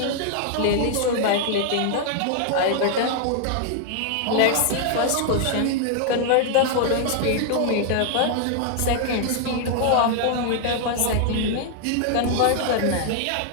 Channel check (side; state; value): both; different; correlation 0.00